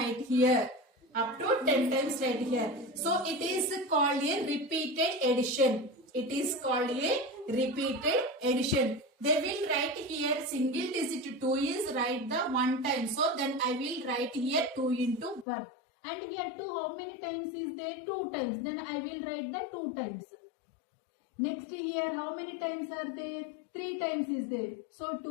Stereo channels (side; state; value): right; drops out; at 15.5 s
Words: here. Up to 10 times right here. So it is called a repeated addition. It is called a repeated addition. They will write here single digit 2 is write the 1 time. So then I will write here 2 into 1. And here 2 how many times is there? 2 times. Then I will write the 2 times. Next here how many times are there? 3 times is there. So